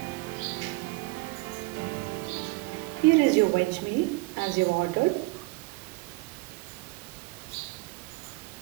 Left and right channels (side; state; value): left; quieter; 24.3 dB